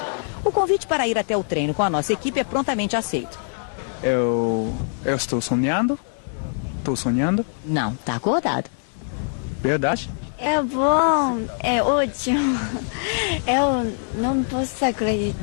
O convite para ir até o treino com a nossa equipe é prontamente aceito. Eu estou sonhando? Estou sonhando? Não, está acordado. Verdade? É bom, é ótimo. Eu não posso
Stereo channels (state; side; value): silent; right; digital silence